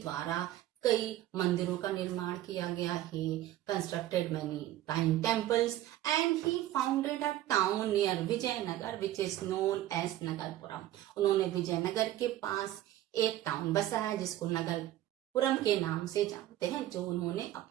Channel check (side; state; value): left; quieter; 13.9 dB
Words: द्वारा कई मंदिरों का निर्माण किया गया है. Constructed many fine temples and he founded a town near Vijayanagar which is known as Nagarpuram. उन्होंने विजयनगर के पास एक टाउन बसाया जिसको नगरपुरम के नाम से जानते हैं, जो उन्होंने